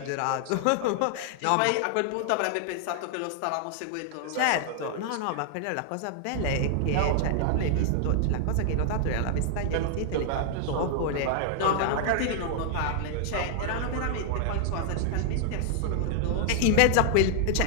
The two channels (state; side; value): different; both; correlation 0.00